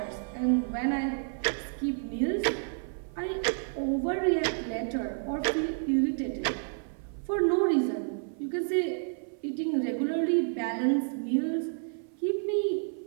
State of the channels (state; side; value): silent; left; 55 dB below the other